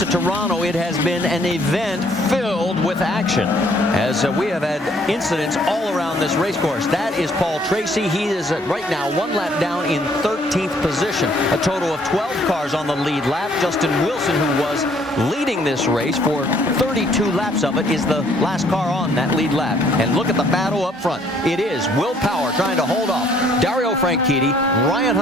of Toronto. It has been an event filled with action as we have had incidents all around this race course. That is Paul Tracy. He is right now 1 lap down in 13th position. A total of 12 cars on the lead lap. Justin Wilson, who was leading this race for 32 laps of it, is the last car on that lead lap. And look at the battle up front. It is Will Power trying to hold off Dario Franchitti, Ryan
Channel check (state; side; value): normal; both; correlation 0.63